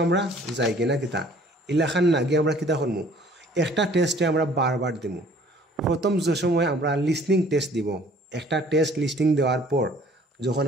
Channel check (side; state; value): both; normal; correlation 0.54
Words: আমরা যাই কিনা কিতা ইলাখান না গিয়ে আমরা কিতা করবো, একটা টেস্টে আমরা বারবার দিব। প্রথম যে সময় আমরা লিসনিং টেস্ট দিব, একটা টেস্ট লিসনিং দেওয়ার পর যখন